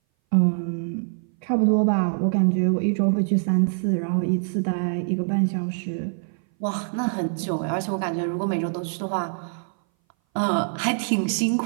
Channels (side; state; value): left; silent; 59 dB below the other